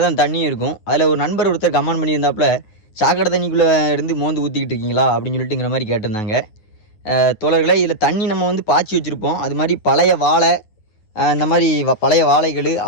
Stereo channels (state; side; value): late; right; 9.4 ms